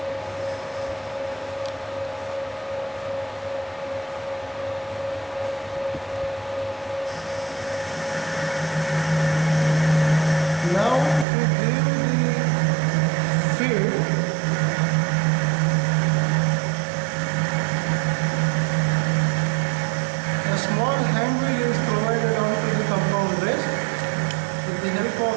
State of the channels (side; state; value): left; drops out; at 11.2 s